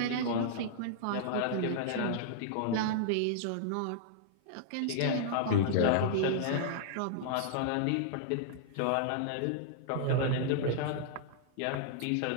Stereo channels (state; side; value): different; both; correlation -0.01